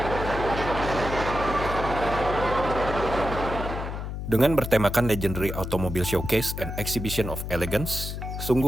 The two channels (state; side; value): noise; left; hum, 6 dB below the sound